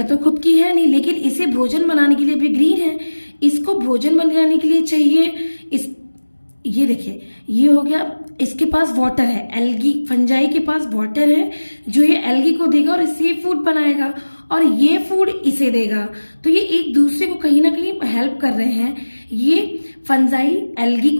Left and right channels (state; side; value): inverted; both; correlation -1.00